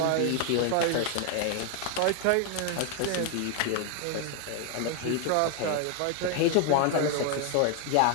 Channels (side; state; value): both; different; correlation 0.01